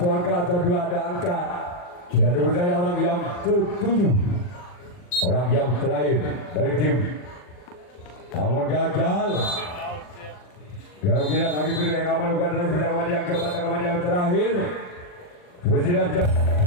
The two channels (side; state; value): right; late; 40 ms